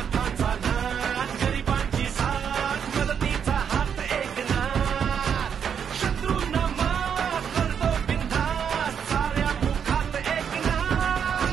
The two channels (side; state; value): left; quieter; 7.6 dB